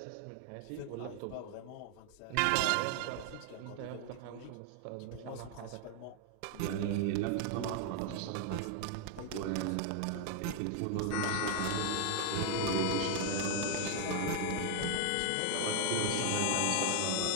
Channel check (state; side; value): different; both; correlation 0.00